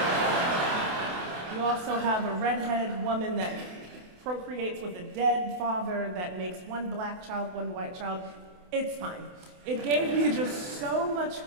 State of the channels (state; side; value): late; left; 28 ms